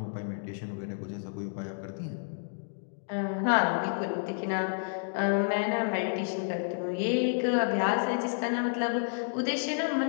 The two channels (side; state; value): right; silent; digital silence